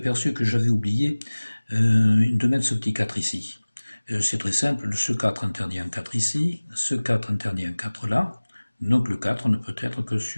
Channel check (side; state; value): both; inverted; correlation -1.00